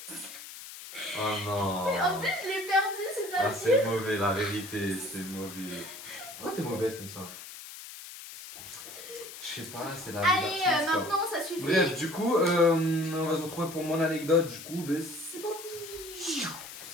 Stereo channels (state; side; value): noise; left; hiss, 13 dB below the sound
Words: Oh non. Et en plus je l'ai perdue, c'est ça Ah, le c'est mauvais, la vérité, c'est mauvais. Pourquoi t'es mauvaise comme ça? Je sais pas, c'est la vie Allez, d'artiste, quoi. maintenant ça suffit. Bref, du coup, on va se retrouver pour mon anecdote, du coup, ben c'est parti.